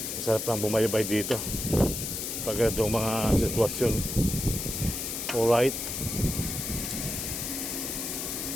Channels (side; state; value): left; noise; hiss, 4 dB below the sound